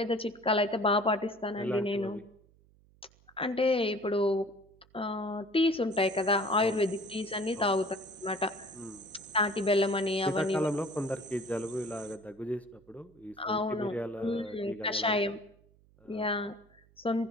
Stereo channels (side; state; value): right; noise; hum, 30 dB below the sound